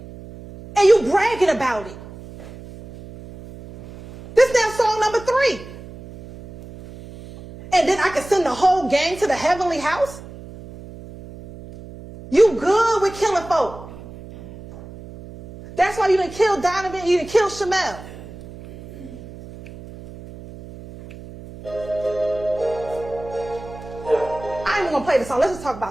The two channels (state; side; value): noise; right; hum, 16 dB below the sound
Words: And you bragging about it. This now song number 3. And then I can send the whole gang to the heavenly house? You good with killing folk. That's why you didn't kill Donovan, you didn't kill Shamel. I ain't even gonna play the song. Let's just talk